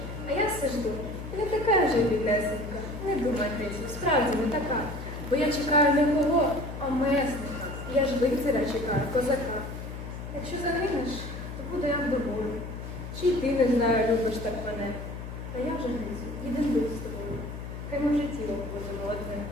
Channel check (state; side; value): noise; left; hum, 9 dB below the sound